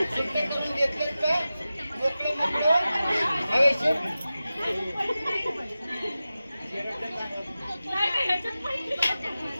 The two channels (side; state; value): both; inverted; correlation -0.95